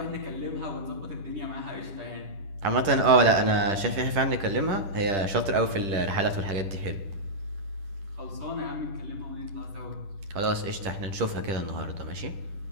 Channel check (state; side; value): late; left; 10 ms